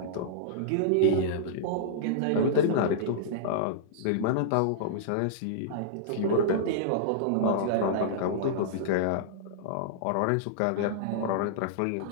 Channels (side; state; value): both; different; correlation -0.02